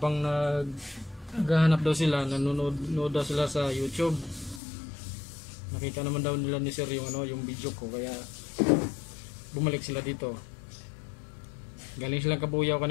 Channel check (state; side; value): drops out; right; at 4.6 s